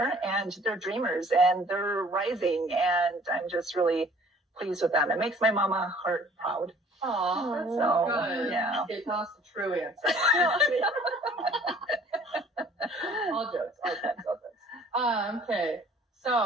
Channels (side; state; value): both; normal; correlation 0.54